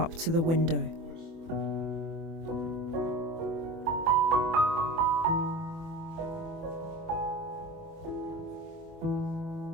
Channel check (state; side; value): late; left; 24 ms